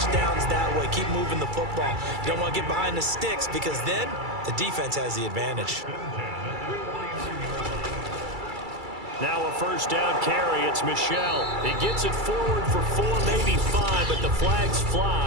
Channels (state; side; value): late; left; 2.3 ms